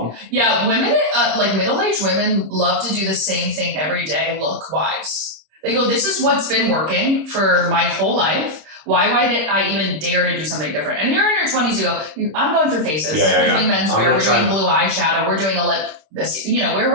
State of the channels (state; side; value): late; left; 26 ms